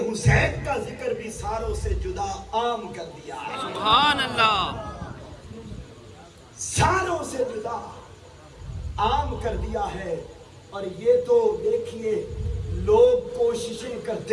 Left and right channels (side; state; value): both; identical; correlation 1.00